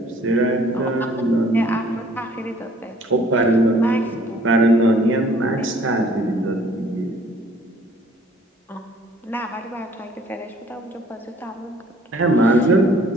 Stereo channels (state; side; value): normal; both; correlation 0.57